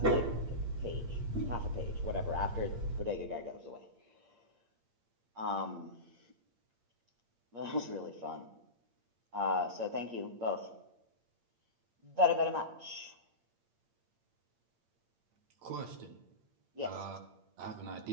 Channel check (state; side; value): late; left; 8.7 ms